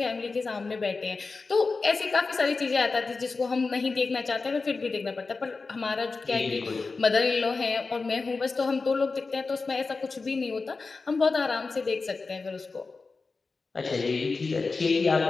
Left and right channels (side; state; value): right; quieter; 4.1 dB